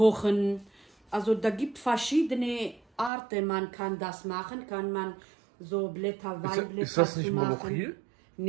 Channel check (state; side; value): drops out; left; at 3.1 s